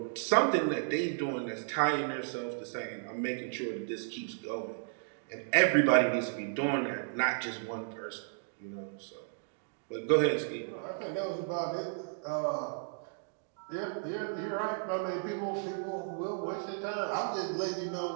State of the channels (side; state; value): left; silent; digital silence